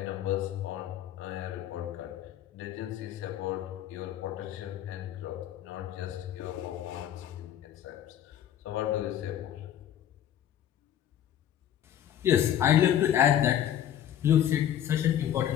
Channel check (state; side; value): quieter; right; 10.7 dB